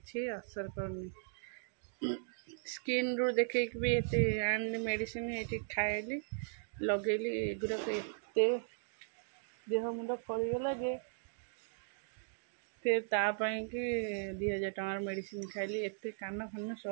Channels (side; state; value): left; silent; digital silence